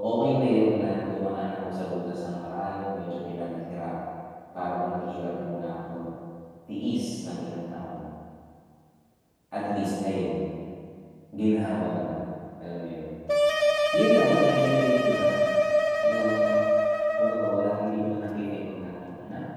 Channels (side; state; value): both; identical; correlation 1.00